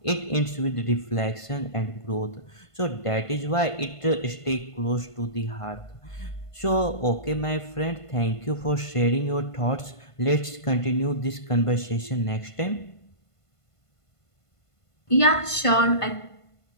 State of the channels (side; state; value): right; late; 1.5 ms